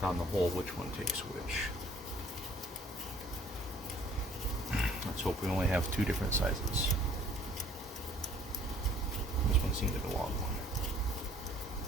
down the hole which one takes which. Let's hope we only have two different sizes. This one seems like a long one,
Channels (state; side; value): normal; both; correlation 0.57